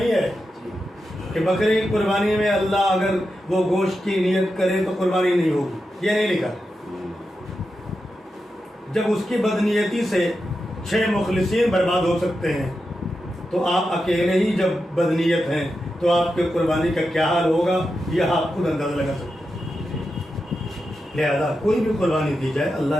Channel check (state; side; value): normal; both; correlation 0.89